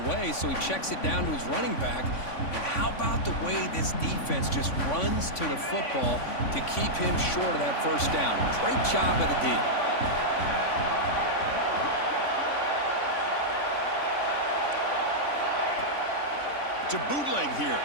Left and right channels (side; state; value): right; late; 3.5 ms